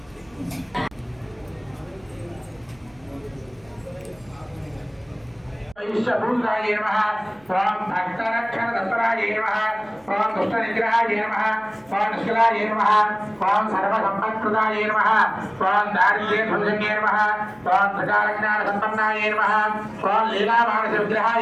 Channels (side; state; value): right; noise; hum, 30 dB below the sound